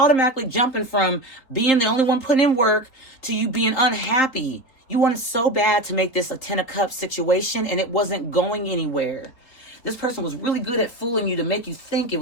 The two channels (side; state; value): right; late; 3.9 ms